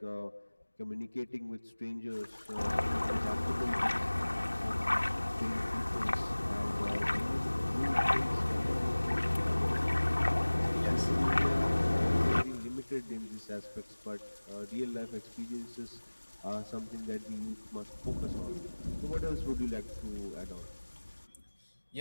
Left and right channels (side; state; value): both; inverted; correlation -1.00